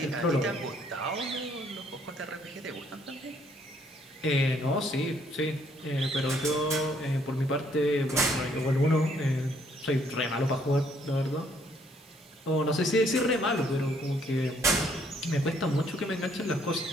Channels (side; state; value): both; normal; correlation 0.66